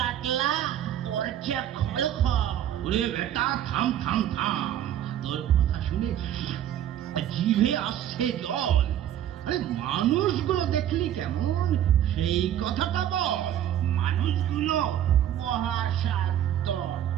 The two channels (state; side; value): quieter; left; 11.0 dB